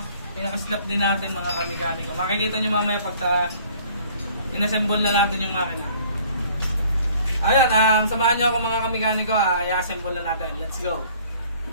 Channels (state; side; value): inverted; both; correlation -0.56